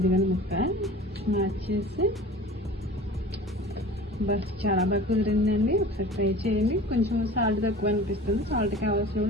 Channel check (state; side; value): normal; both; correlation 0.40